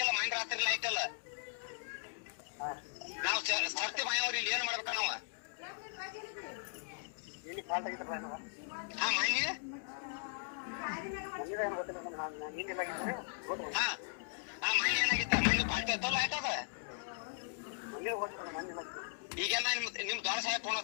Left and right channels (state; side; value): silent; right; digital silence